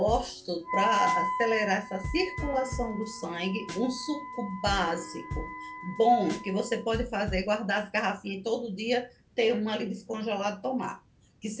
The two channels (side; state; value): both; identical; correlation 1.00